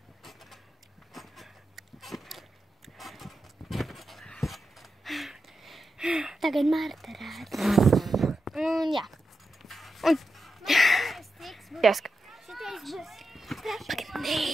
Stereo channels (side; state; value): both; normal; correlation 0.89